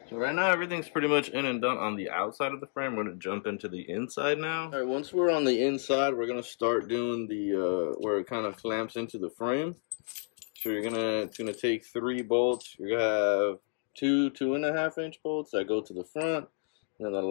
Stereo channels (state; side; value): silent; right; 57 dB below the other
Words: So right now everything's pretty much in and done on the outside of the frame. We're going to jump into the inside now. Alright, once we're on the inside, we're going to start doing the where it kind of clamps into the frame. So you're gonna take 3 bolts. You're going to have 2.5 inch bolts that go to the front, and then the